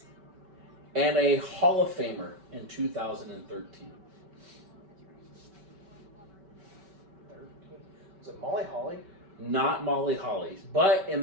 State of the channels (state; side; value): late; left; 5.2 ms